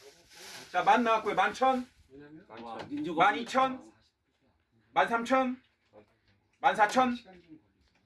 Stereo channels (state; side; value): identical; both; correlation 1.00